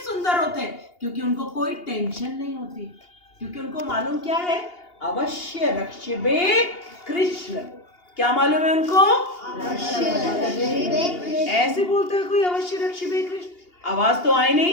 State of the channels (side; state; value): right; late; 2.8 ms